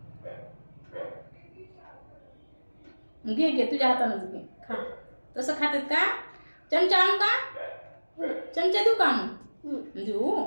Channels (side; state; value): both; inverted; correlation -1.00